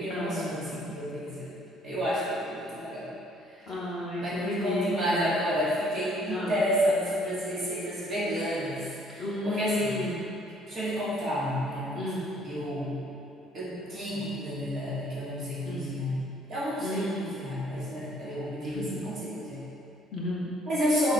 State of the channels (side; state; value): both; normal; correlation 0.62